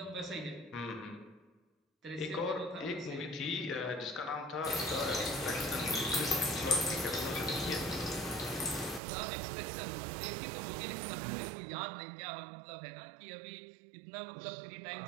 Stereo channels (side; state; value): left; drops out; at 9.0 s